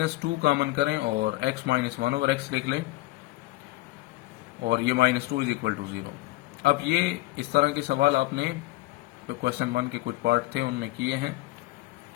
कॉमन करें और x -1 ओवर x लिख लें, और ये -2 इज इक्वल टू 0। अब ये इस तरह के सवाल आपने तो क्वेश्चन 1 के कुछ पार्ट थे उनमें किए हैं,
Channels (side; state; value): right; quieter; 19.1 dB